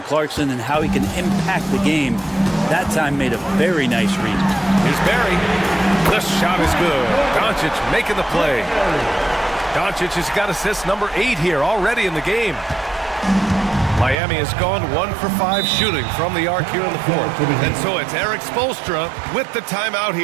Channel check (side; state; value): left; drops out; at 14.2 s